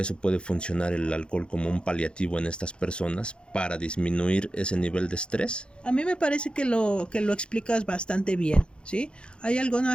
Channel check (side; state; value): right; late; 0.055 ms